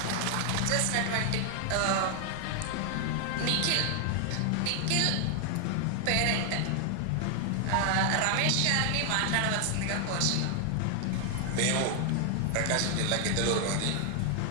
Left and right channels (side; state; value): both; different; correlation 0.00